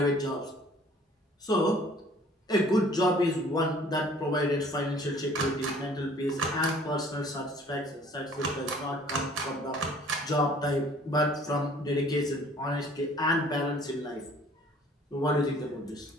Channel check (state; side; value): normal; both; correlation 0.53